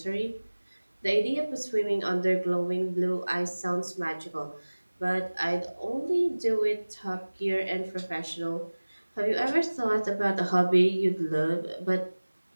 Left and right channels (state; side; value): inverted; both; correlation -1.00